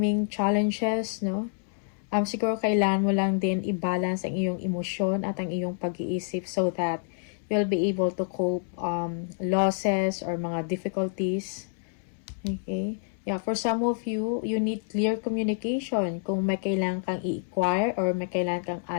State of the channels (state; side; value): silent; right; 59 dB below the other